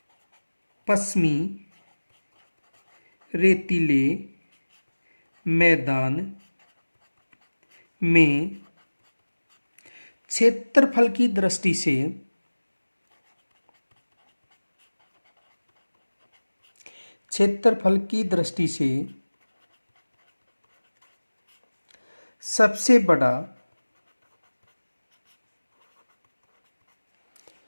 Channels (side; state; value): both; inverted; correlation -1.00